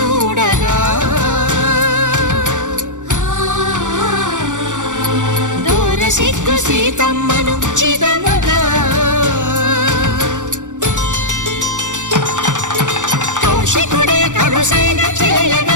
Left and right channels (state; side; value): late; left; 0.86 ms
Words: దూర సిగ్గు సీతమ్మను చిదమగా, కౌశికుడే కరుసైన